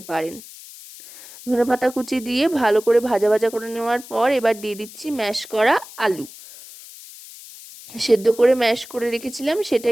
পারেন। ধনেপাতা কুচি দিয়ে ভালো করে ভাজা ভাজা করে নেওয়ার পর এবার দিয়ে দিচ্ছি ম্যাশ করা আলু। সেদ্ধ করে ম্যাশ করে রেখেছিলাম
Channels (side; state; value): left; noise; hiss, 17 dB below the sound